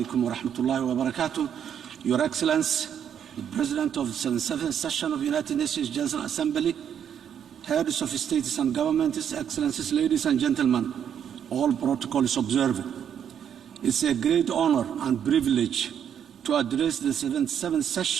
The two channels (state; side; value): quieter; left; 8.7 dB